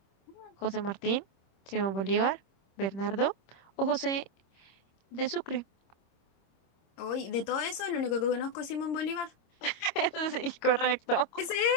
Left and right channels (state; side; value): late; right; 26 ms